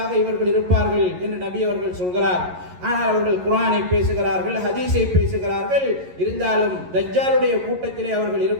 இவர்கள் இருப்பார்கள் என்று நபி அவர்கள் சொல்கிறார். ஆனால் அவர்கள் குர்ஆனை பேசுகிறார்கள், ஹதீஸை பேசுகிறார்கள், இருந்தாலும் தஜ்ஜாலுடைய கூட்டத்திலே அவர்கள்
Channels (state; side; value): late; left; 11 ms